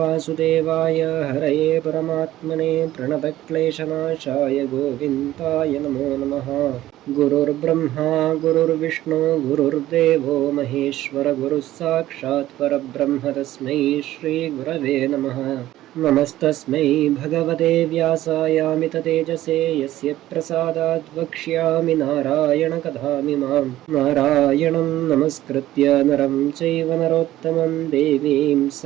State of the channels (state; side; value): quieter; left; 14.6 dB